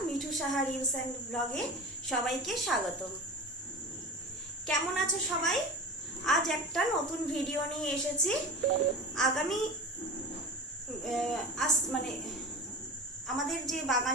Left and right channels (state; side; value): normal; both; correlation 0.31